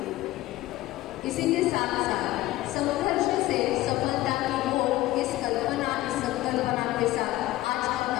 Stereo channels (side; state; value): right; quieter; 16.8 dB